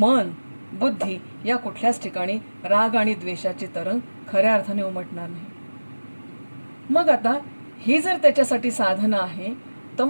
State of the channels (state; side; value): inverted; both; correlation -1.00